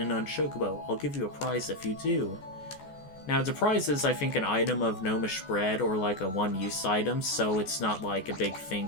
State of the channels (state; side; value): late; right; 14 ms